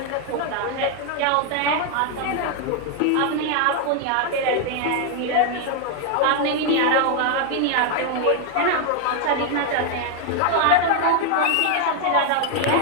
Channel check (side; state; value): both; different; correlation 0.00